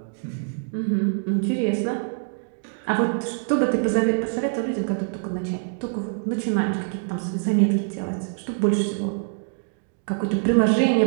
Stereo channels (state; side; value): silent; left; digital silence